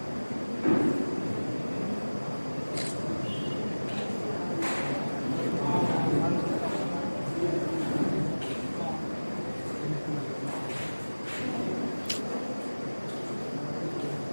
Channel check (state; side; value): inverted; both; correlation -1.00